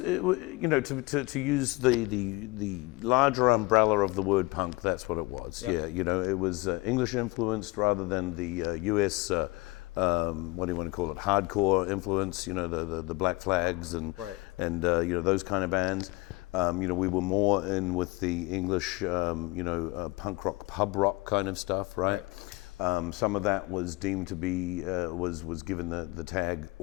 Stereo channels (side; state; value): right; quieter; 22.8 dB